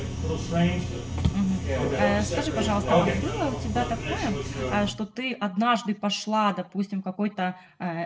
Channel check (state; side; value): identical; both; correlation 1.00